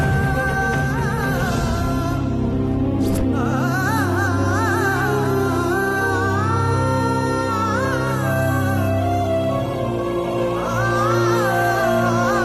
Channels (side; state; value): both; identical; correlation 1.00